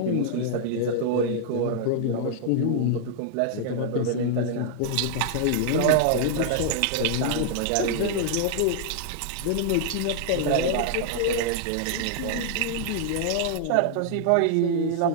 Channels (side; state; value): both; different; correlation -0.01